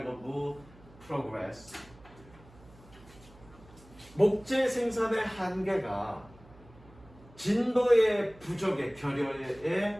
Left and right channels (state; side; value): noise; right; hum, 23 dB below the sound